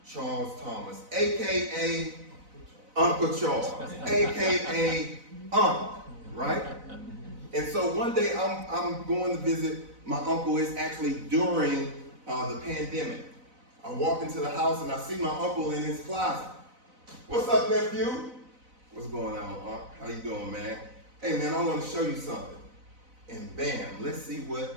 Charles Thomas, aka Uncle Charles, aka Unc, right? And so one day I'm going to visit my uncle. It's actually during the pandemic. I walk into the house and I see my uncle in his closet. What's up, nephew? What's going on, Unc? How you doing, man? Hey, man, I want to show you something. And bam, let's see what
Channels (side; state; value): left; late; 4.0 ms